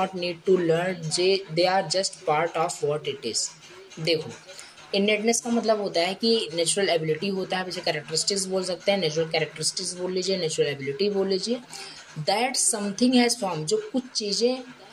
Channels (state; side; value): identical; both; correlation 1.00